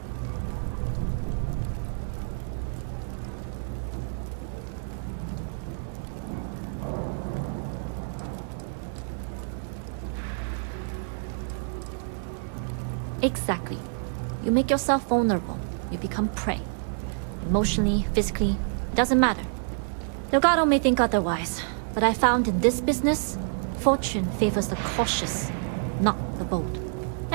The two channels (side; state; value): left; silent; digital silence